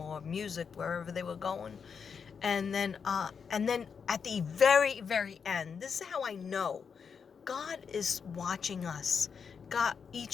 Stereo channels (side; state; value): right; quieter; 6.3 dB